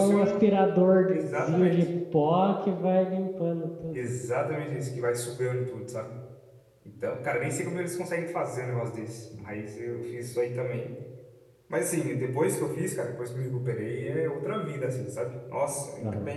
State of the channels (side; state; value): both; identical; correlation 1.00